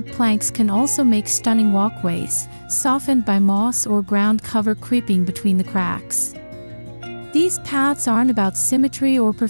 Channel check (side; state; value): both; inverted; correlation -1.00